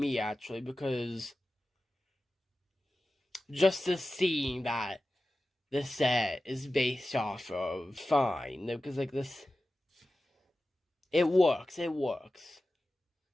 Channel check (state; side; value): normal; both; correlation 0.94